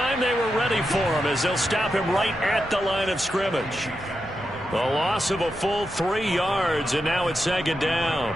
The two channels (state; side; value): normal; both; correlation 0.87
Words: they were ready for him as they'll stop him right at the line of scrimmage. The loss of a full 3 yards, and now it's 2nd down.